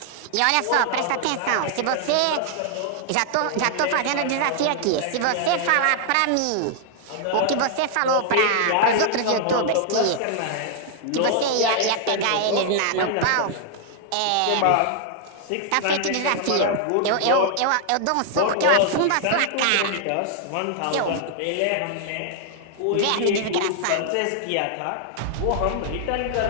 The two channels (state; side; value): different; both; correlation 0.00